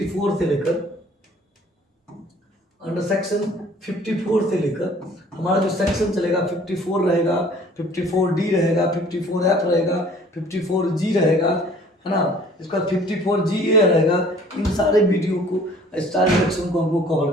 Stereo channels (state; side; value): normal; both; correlation 0.53